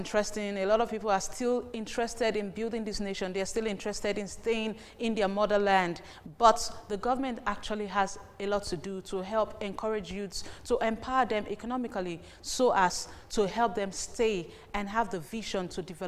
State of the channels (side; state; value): both; identical; correlation 1.00